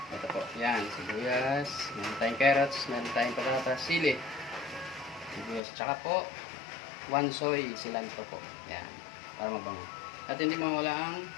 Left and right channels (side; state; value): right; drops out; at 5.6 s